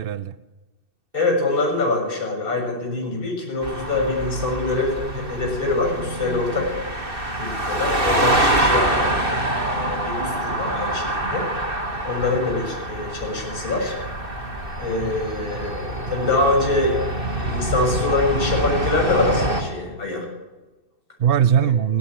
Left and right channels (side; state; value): left; late; 2.6 ms